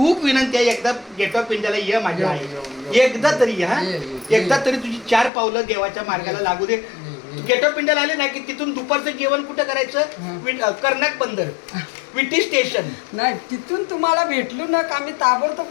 विनंती आहे, एकदा गेट ऑफ इंडियाला ये माझ्या आई, एकदा तरी या, एकदा तरी तुझी 4 पावलं देवाच्या मार्गाला लागू दे. गेट ऑफ इंडियाला आले नाही की तिथून दुपारचं जेवण कुठं करायचं, कर्नाक बंदर विटी स्टेशन नाही, तिथून तुम्हाला भेटलो ना का आम्ही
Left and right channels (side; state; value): right; drops out; at 5.3 s